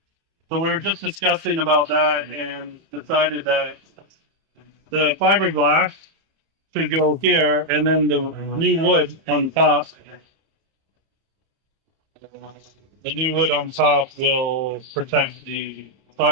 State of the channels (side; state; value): left; late; 30 ms